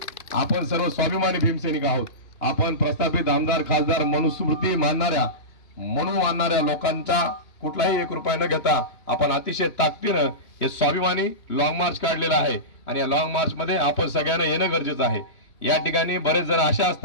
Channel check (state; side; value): late; right; 3.1 ms